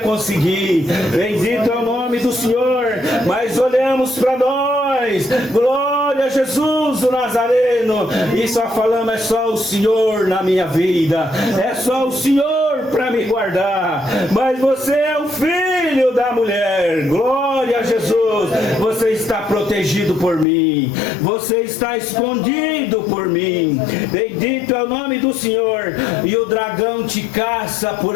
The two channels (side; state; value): right; drops out; at 20.5 s